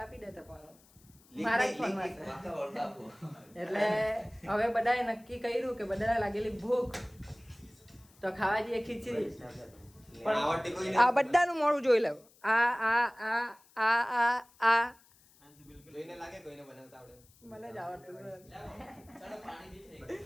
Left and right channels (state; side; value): noise; left; hiss, 28 dB below the sound